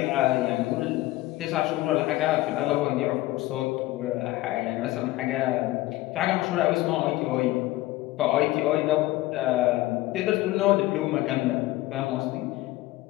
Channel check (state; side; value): quieter; right; 17.7 dB